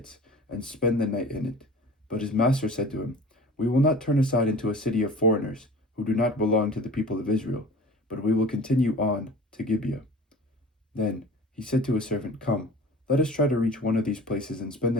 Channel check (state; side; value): normal; both; correlation 0.41